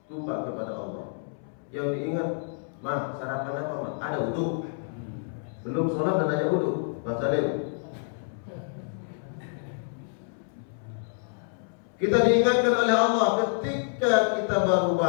lupa kepada Allah. Yang diingat, mah sarapan apa mah? Ada wudu. Belum sholat dan hanya wudu. Bang Salim. Kita diingatkan oleh Allah ketika kita baru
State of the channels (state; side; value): silent; right; 59 dB below the other